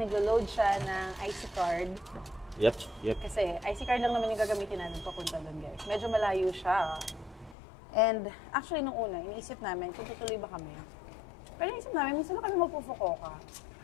naglo-load siya ng IC card. Yep. Kasi IC card lang naman yung gagamitin natin papunta doon, guys. Medyo malayo siya. And actually, nung una, iniisip namin kung tutuloy ba kami. Pero iniisip namin, minsan na kami magpufukoka.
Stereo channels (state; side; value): drops out; right; at 7.6 s